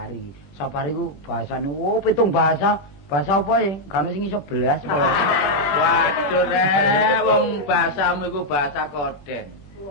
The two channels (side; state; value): right; late; 21 ms